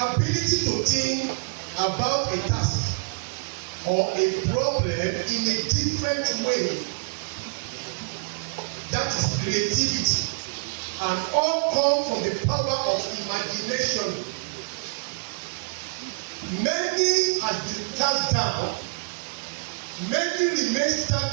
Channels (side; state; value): left; quieter; 39.3 dB